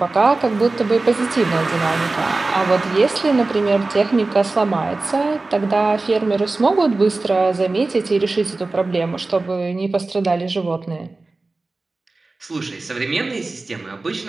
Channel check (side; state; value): left; quieter; 3.4 dB